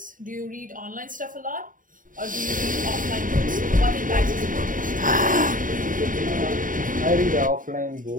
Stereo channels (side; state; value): left; late; 0.39 ms